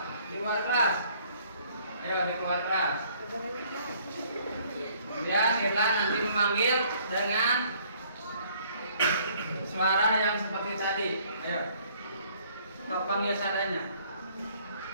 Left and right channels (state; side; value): inverted; both; correlation -0.60